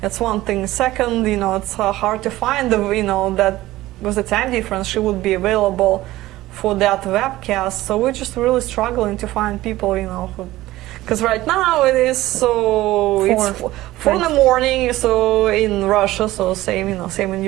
one thing. Second, you know, it's hard to find you know, that with the time difference she would be available for that webcast. So we're just really struggling to find people, you know, because right now it is it's 4 in the morning, so in Russia, so same, you know, same in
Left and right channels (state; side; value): quieter; left; 16.7 dB